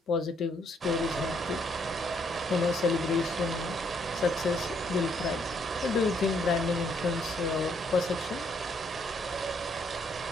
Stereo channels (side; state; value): both; normal; correlation 0.70